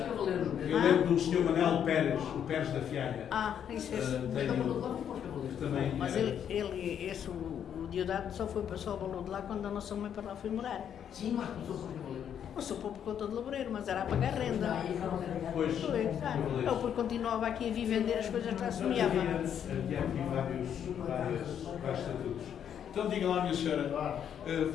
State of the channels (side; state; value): right; quieter; 8.9 dB